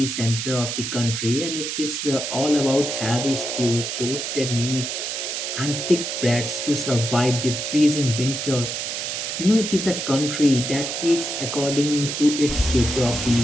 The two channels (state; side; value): noise; right; hiss, 4 dB below the sound